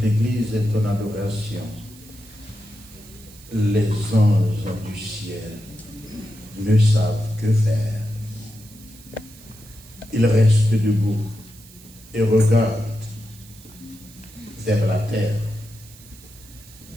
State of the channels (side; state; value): right; noise; hiss, 22 dB below the sound